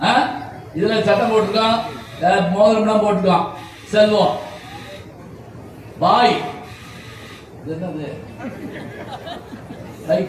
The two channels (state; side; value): identical; both; correlation 1.00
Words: இதுல சட்டம் போட்டிருக்கோம், மோதிரம் போட்டுக்கோம், செல்வம். வாய் என்னது?